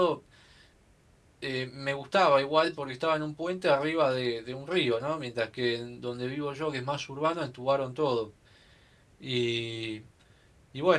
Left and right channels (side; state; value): both; identical; correlation 1.00